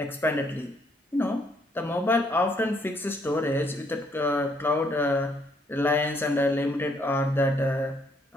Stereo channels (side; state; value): both; normal; correlation 0.69